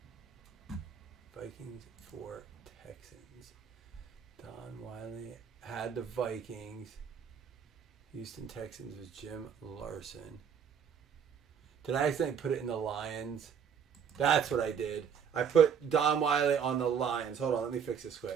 Vikings for Texans. Don Wiley had the Vikings. Houston Texans was Jim Larson. Did I accidentally put it in the Lions? That's what I did. I put Don Wiley on the Lions. Hold on, let me fix this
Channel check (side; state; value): left; quieter; 7.5 dB